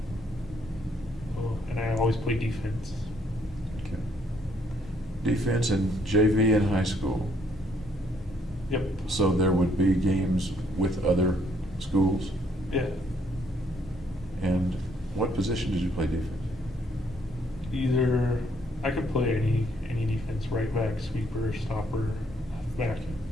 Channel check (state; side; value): normal; both; correlation 0.68